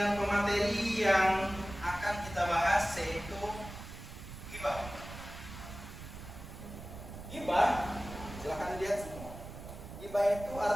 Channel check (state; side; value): noise; right; rumble, 12 dB below the sound